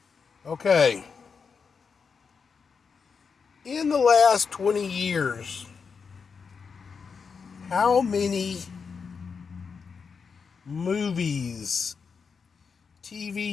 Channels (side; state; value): right; quieter; 5.6 dB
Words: Okay. In the last 20 years, how many movies,